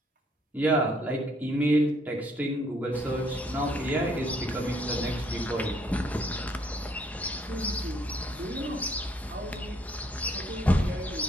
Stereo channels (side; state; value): both; normal; correlation 0.66